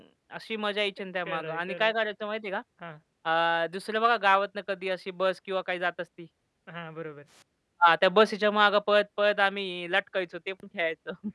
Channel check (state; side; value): identical; both; correlation 1.00